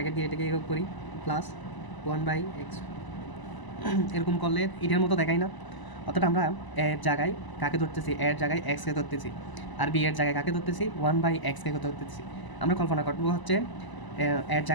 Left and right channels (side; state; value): right; late; 1.0 ms